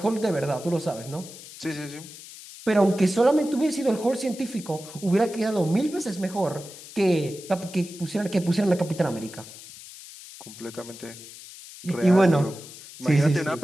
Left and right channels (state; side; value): noise; left; hiss, 16 dB below the sound